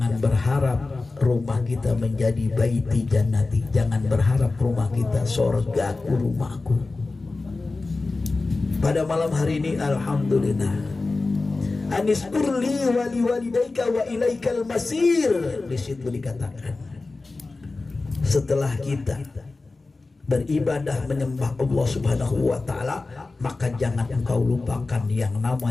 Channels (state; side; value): quieter; right; 3.6 dB